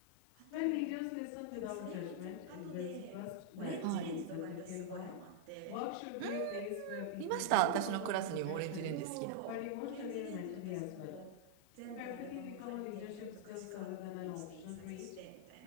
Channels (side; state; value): both; different; correlation -0.01